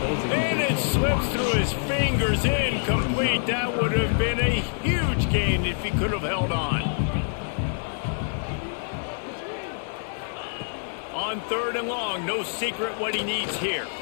And it slips through his fingers, incomplete. That would have been a huge gain if he could have held on. On third and long, no secret what he needs here.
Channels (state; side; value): silent; right; digital silence